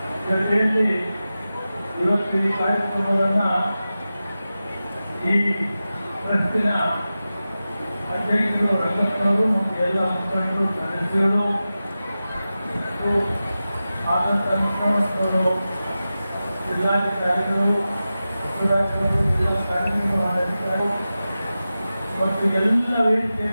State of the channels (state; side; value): inverted; both; correlation -0.94